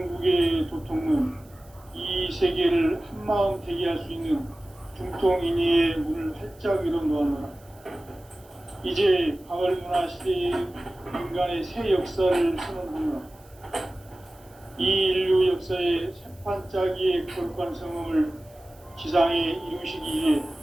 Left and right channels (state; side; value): noise; right; hiss, 29 dB below the sound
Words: 도통은 이 세계를 한마음 되게 할 수 있는 중통인의의 문을 활짝 열어놓았노라. 이제 가을문화 시대의 인간의 새 역사를 선언하노라. 이 인류 역사의 새판짜기의 거룩한 성음을 지상에 이루시기 위해